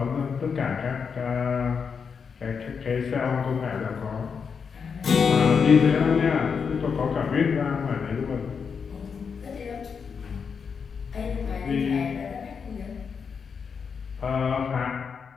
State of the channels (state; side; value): quieter; right; 6.1 dB